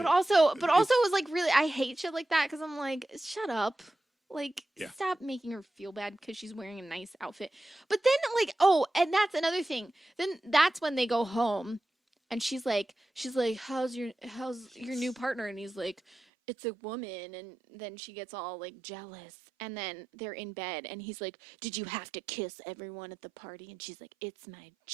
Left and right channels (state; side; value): drops out; left; at 16.2 s